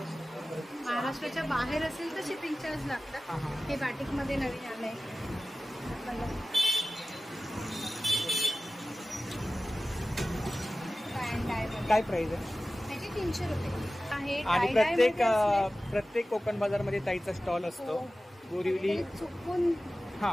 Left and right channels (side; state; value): both; normal; correlation 0.96